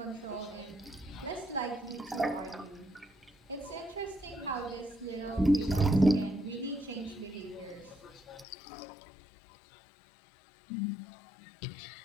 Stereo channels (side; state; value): right; drops out; at 8.5 s